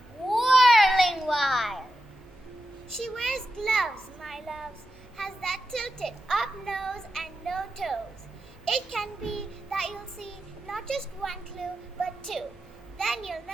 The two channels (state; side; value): normal; both; correlation 0.89